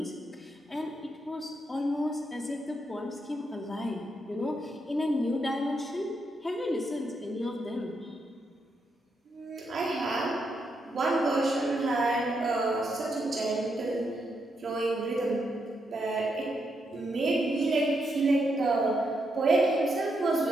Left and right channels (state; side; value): normal; both; correlation 0.81